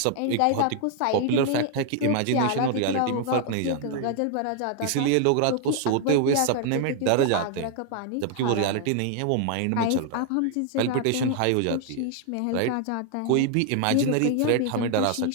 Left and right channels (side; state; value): both; different; correlation 0.00